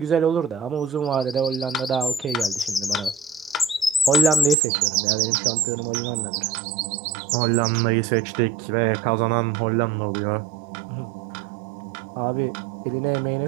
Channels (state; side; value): drops out; left; at 4.5 s